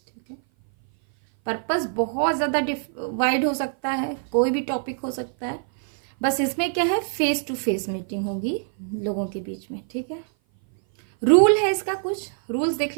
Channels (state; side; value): silent; left; 57 dB below the other